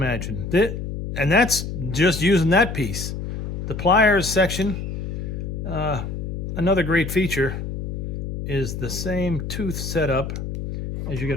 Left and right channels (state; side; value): noise; left; hum, 5 dB below the sound